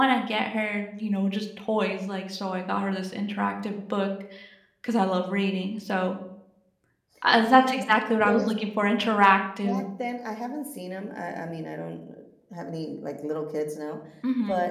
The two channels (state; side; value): identical; both; correlation 1.00